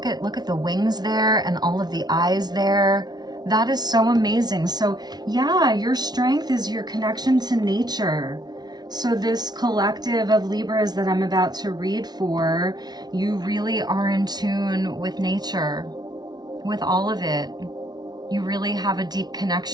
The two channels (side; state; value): left; late; 0.19 ms